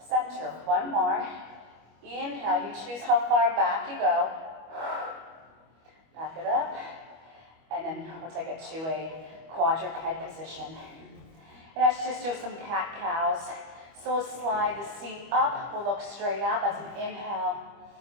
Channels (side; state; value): left; late; 25 ms